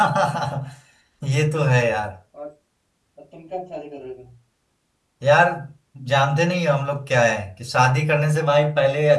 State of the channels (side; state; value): both; identical; correlation 1.00